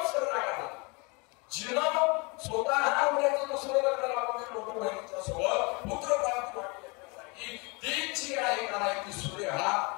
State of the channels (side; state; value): right; quieter; 29.5 dB